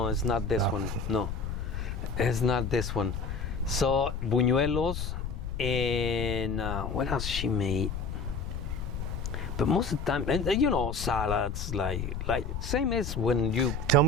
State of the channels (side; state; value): left; noise; rumble, 4 dB below the sound